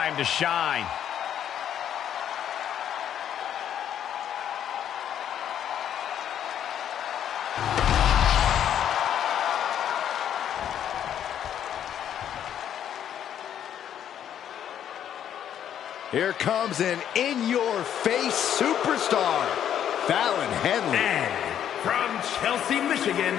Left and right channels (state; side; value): quieter; right; 9.8 dB